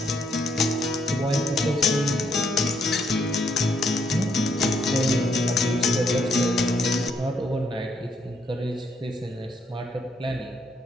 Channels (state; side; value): normal; both; correlation 0.73